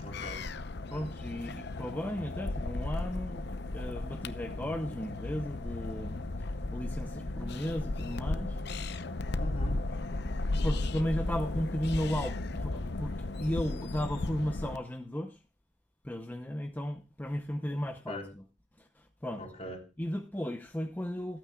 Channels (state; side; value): normal; both; correlation 0.88